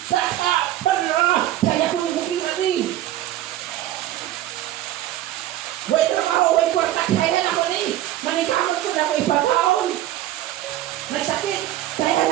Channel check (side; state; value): left; quieter; 13.7 dB